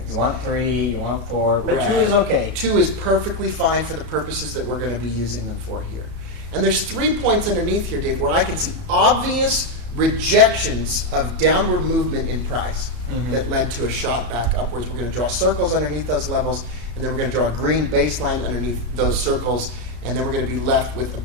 You want 3, you want 4, but Right. 2 is okay. 2 is perfectly fine for the purposes that we're going to be using them for here. And there's 3 points underneath here, Dave, where I can see obvious rejections of downward movement in price that led to a shot back upwards. We're going to draw circles underneath those levels, and then we're going to draw a green baseline underneath those circles, and then we're going to be left with a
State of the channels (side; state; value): left; late; 33 ms